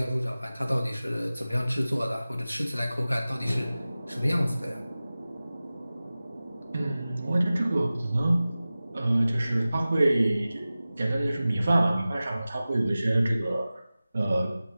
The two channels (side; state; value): both; inverted; correlation -0.96